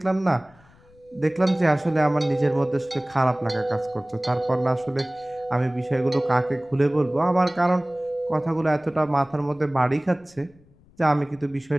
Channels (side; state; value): left; noise; rumble, 28 dB below the sound